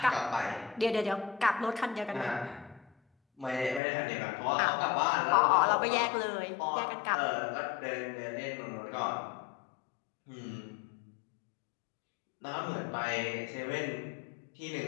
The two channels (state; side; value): drops out; right; at 3.8 s